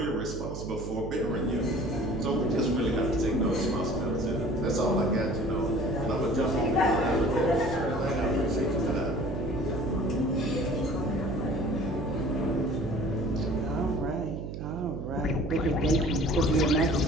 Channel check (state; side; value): noise; right; hum, 7 dB below the sound